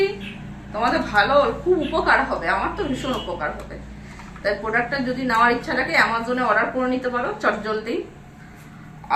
তোমাদের ভালো, খুব উপকার হবে, আমার তো ভীষণ উপকার হবে। তাই প্রোডাক্টটা যদি নেওয়ার ইচ্ছা থাকে অ্যামাজনে অর্ডার করে নিতে পারো চটজলদি।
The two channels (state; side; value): identical; both; correlation 1.00